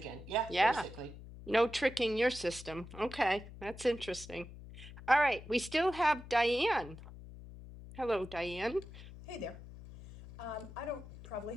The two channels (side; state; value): left; noise; hum, 15 dB below the sound